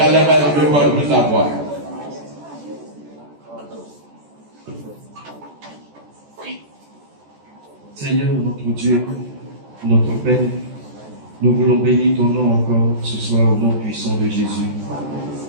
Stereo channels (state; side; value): late; left; 14 ms